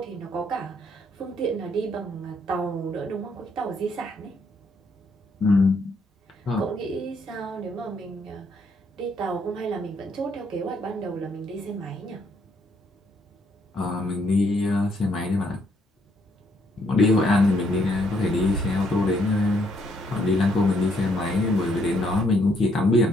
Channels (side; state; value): both; normal; correlation 0.71